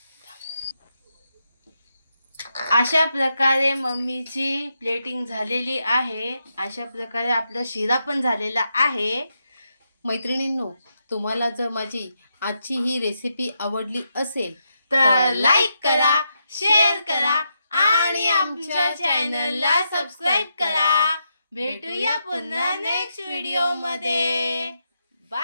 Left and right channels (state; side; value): inverted; both; correlation -0.83